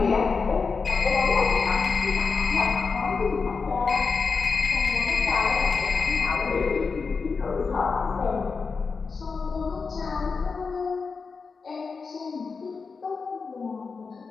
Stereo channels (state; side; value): quieter; right; 4.8 dB